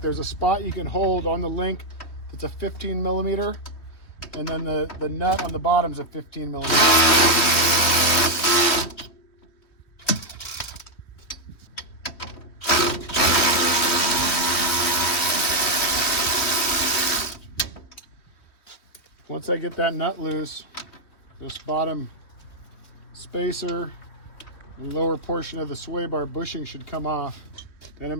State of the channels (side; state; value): right; late; 3.2 ms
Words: a spot you can hold on the link that's a 15 millimeter, and then the nut on the bottom is a 15 millimeter. Once I get that nut loose, this bottom spacer, the lower portion of the sway bar bushing should come off. Then I'm